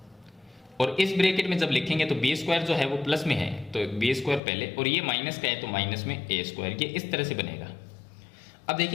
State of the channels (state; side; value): drops out; right; at 4.4 s